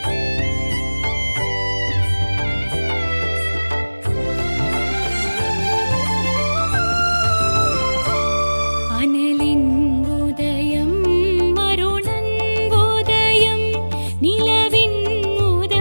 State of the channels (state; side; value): inverted; both; correlation -1.00